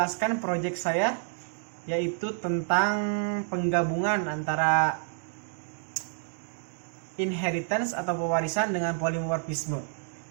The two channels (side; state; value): left; silent; digital silence